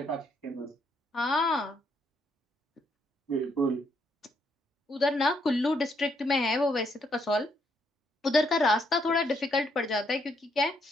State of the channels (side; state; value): both; normal; correlation 0.74